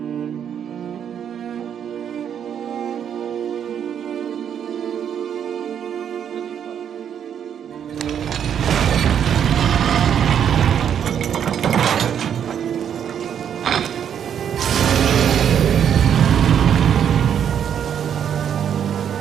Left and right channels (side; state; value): left; quieter; 8.7 dB